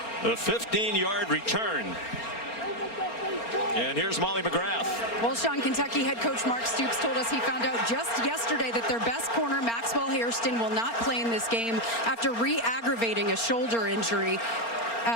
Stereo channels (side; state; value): right; late; 4.4 ms